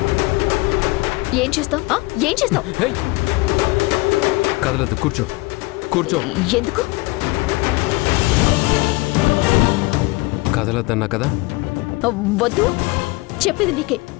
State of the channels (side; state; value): right; quieter; 23.4 dB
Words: ఏం చేస్తావు? ఏం చేస్తావు? హేయ్! కదలదు, కూర్చో కూర్చో. ఎందుకు కదలద్దన్నా కదా. వద్దు చెప్పేది నీకే.